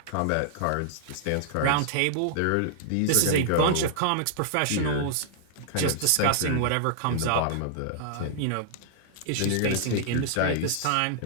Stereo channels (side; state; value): both; different; correlation -0.01